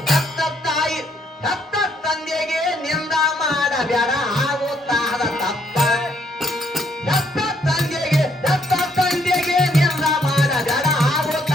ಹೆತ್ತ ತಾಯಿ ಹೆತ್ತ ತಂದೆಗೆ ನಿಂದ ಮಾಡಬೇಡ ಆಗುತ್ತಾದ ತಪ್ಪ. ಹೆತ್ತ ತಂದೆಗೆ ನಿಂದ ಮಾಡಬೇಡ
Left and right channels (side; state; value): both; normal; correlation 0.70